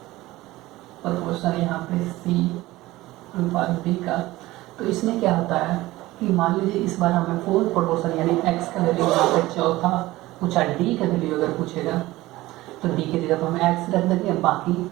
प्रोपोर्शन यहाँ पे c अनुपात b का, तो इसमें क्या होता है कि मान लीजिए इस बार हमें फोर्थ प्रोपोर्शन यानी x का वैल्यू यहाँ पे चौथा पूछा, d का वैल्यू अगर पूछेगा तो d की जगह पर हम x रख देंगे, बाकी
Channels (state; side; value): quieter; left; 18.1 dB